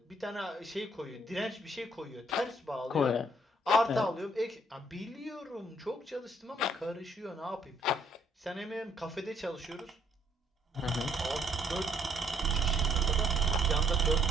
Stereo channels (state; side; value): normal; both; correlation 0.66